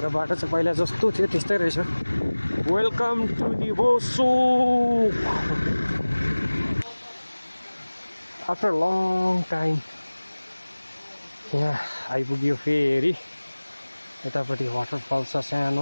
बाटो चाहिँ पहिला जस्तो थियो त्यस्तै रहेछ वेलकम टु दि बोसोक आफ्टर लङ टाइम यहाँ आइपुग्यो फेरि यतापट्टि वाटरफल छ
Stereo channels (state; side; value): inverted; both; correlation -1.00